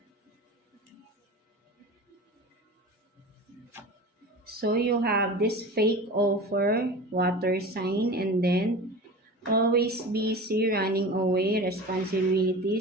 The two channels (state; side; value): normal; both; correlation 0.34